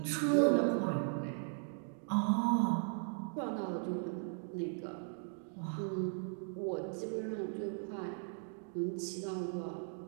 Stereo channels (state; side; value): silent; left; 53 dB below the other